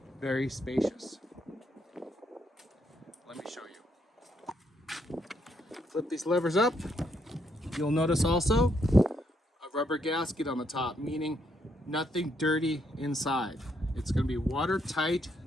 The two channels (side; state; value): both; normal; correlation 0.75